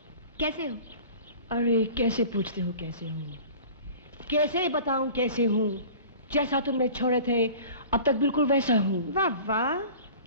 कैसे हो? अरे कैसे पूछते हो कैसे हूँ? कैसे बताऊं कैसे हूँ? जैसा तुमने छोड़े थे अब तक बिल्कुल वैसा हूँ। वाह वाह,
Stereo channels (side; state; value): both; inverted; correlation -0.42